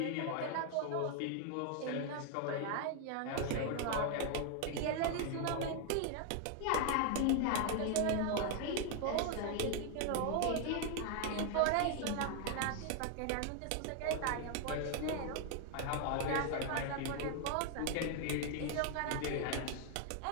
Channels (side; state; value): both; different; correlation 0.00